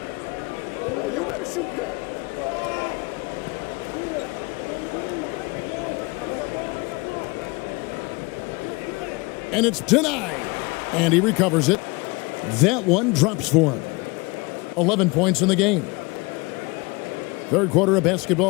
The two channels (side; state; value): right; quieter; 26.2 dB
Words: And it's denied. And he recovers it. That one drops for him. 11 points in the game. Third quarter of